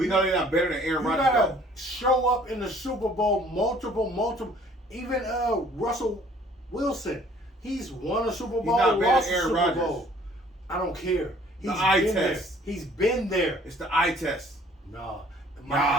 know they're not better than Aaron You Rodgers. gotta though. show up in the Super Bowl multiple. Even Russell Wilson, he's won a Super Bowl, not better lost than a Aaron Super Rodgers. Bowl. I don't care. He's eye been test. there. He's been there. It's the eye test. Nah.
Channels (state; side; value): normal; both; correlation 0.56